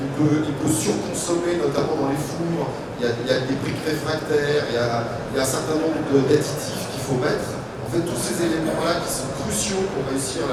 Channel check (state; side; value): identical; both; correlation 1.00